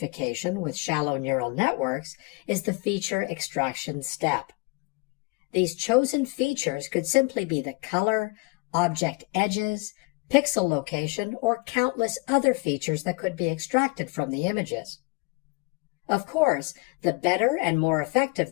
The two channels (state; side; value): quieter; right; 27.8 dB